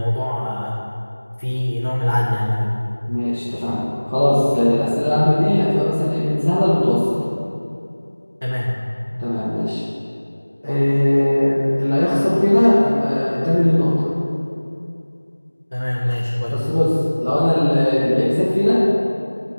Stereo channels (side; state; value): both; inverted; correlation -1.00